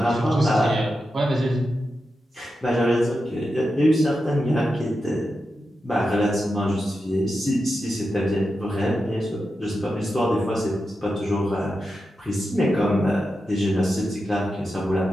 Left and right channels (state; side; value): normal; both; correlation 0.89